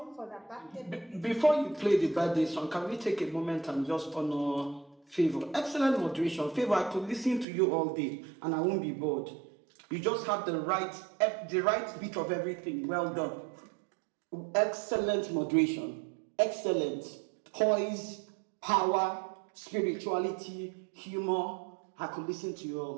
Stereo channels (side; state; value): left; drops out; at 7.5 s